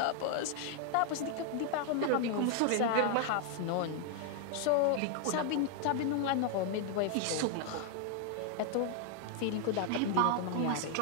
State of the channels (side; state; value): both; different; correlation 0.00